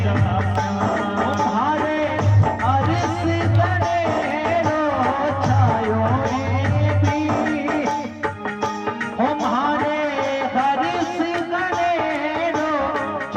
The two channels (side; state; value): both; identical; correlation 1.00